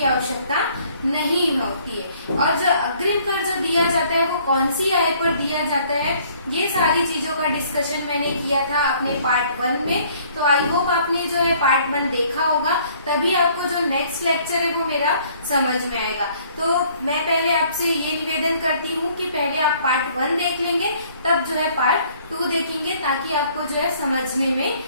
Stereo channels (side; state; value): both; inverted; correlation -0.59